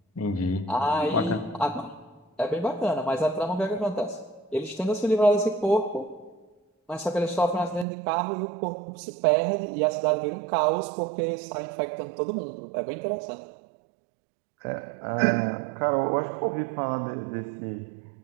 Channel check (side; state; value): left; drops out; at 7.9 s